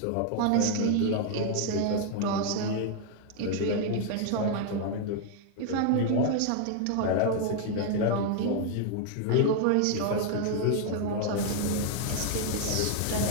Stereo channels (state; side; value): different; both; correlation 0.00